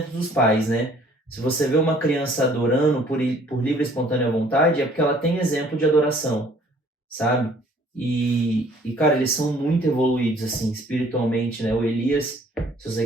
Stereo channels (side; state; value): both; normal; correlation 0.57